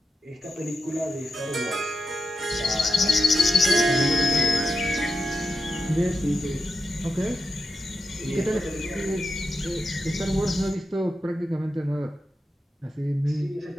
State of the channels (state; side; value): normal; both; correlation 0.86